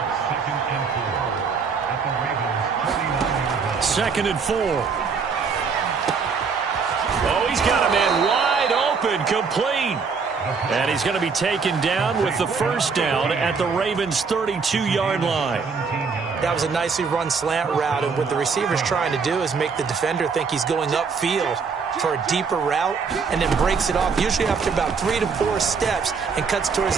Second and 4. Oh, he's got a man wide open, complete. And he's going to be taken down with the first down at the Ravens' 32-yard line. That was a nicely run slant route, and what the receiver's trying to do is make the defender think he's going upfield for a deeper route and then breaks it off, usually after about 3 to 4 steps, and cuts towards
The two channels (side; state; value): left; quieter; 5.4 dB